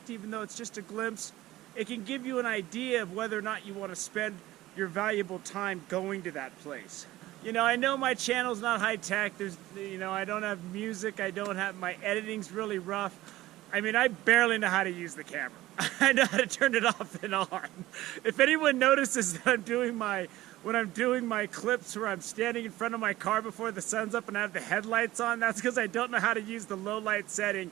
even though it's just a glimpse, it can give you an idea of whether or not you want to spend your valuable time going to that place. You know, I know my channel's not high tech. There's, you know, I don't have music. I don't have, my editing's really rough. I mean, I barely know how to use the camera. I know how to turn it off and on. If anyone notices that when I'm doing my clips where I'm standing in front of my car before the sun's up and I have the headlights on, that's because I don't know how to use the low light setting.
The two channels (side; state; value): left; quieter; 16.5 dB